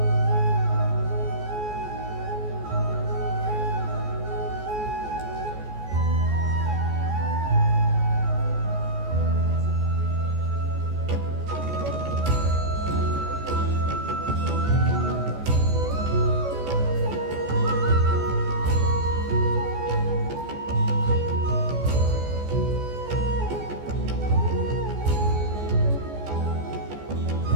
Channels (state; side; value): late; left; 14 ms